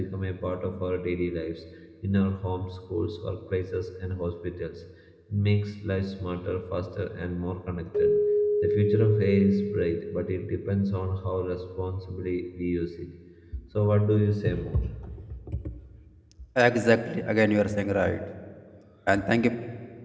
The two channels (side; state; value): both; identical; correlation 1.00